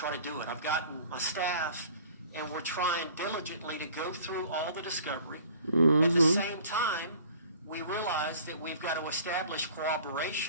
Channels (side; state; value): both; inverted; correlation -0.50